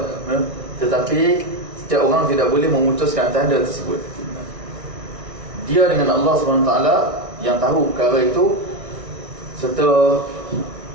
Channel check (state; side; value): late; left; 1.6 ms